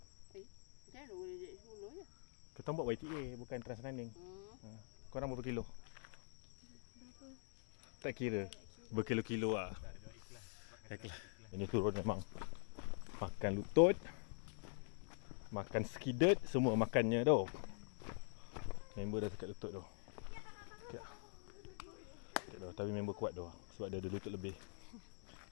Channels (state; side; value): silent; right; digital silence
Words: mana boleh jadi 10 je? Kita buat YTA bukan Transrunning. Korang berapa kilo? Tak kira. Berkilo-kilo lah. Ikhlas. Ini turun memang. Makan lutut, makan skidet, semua makannya tu. Member dah dekat lutut tu. Okay. Tapi member kuat tu sebab dia ada lutut lebih.